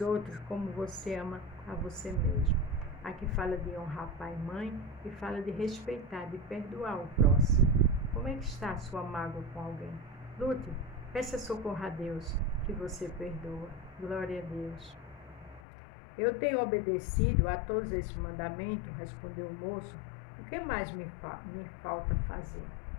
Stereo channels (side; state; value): right; drops out; at 15.6 s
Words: outros como você ama a você mesmo. Aqui fala de honrar pai e mãe e fala de respeitar, de perdoar o próximo. Como é que está a sua mágoa com alguém? Lute, peça socorro a Deus que você perdoa. Glória a Deus. Eu tenho obedecido a todos esses mandamentos, respondeu o moço. O que mais me falta fazer?